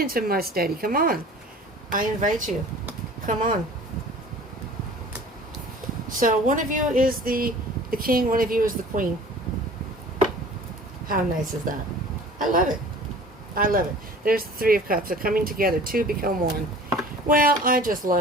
my steady. Come on. I invite you. Come on. So one of you is the King, one of you is the Queen. How nice is that? I love it. I love it. There's the Three of Cups. They're coming together. Two become one. Well, I just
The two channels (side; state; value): both; normal; correlation 0.45